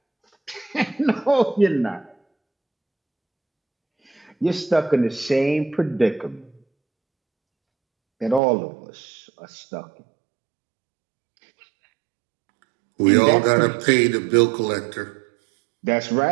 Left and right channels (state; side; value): drops out; left; at 8.4 s